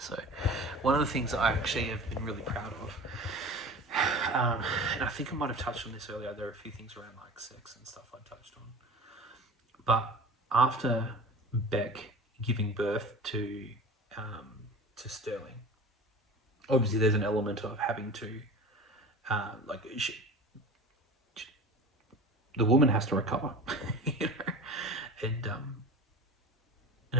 one of the things that I actually have been really proud of, and I think I might have touched on this earlier. There are a few things around like sex and stuff I touched on, but after Beck giving birth to Sterling, obviously there's an element of having to the woman has to recover, and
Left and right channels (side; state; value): both; normal; correlation 0.36